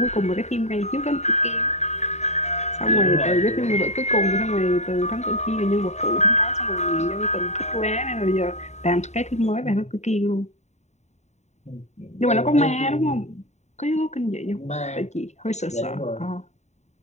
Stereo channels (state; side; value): late; right; 0.33 ms